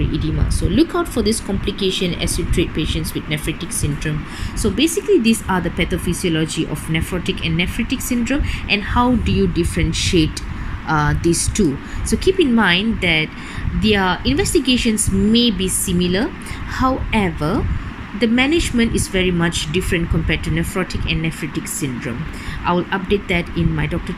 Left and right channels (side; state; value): both; identical; correlation 1.00